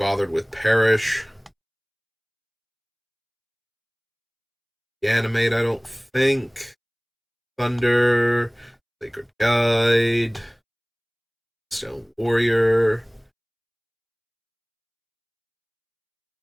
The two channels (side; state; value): both; identical; correlation 1.00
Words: with Perish. Animate, I don't think. Thunder, Sacred Guide, Stone Warrior.